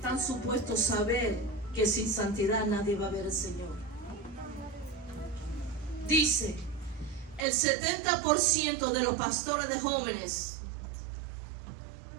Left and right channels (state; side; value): drops out; left; at 7.5 s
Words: supuestos saber que sin santidad nadie va a ver al Señor. Dice, el 70% de los pastores de jóvenes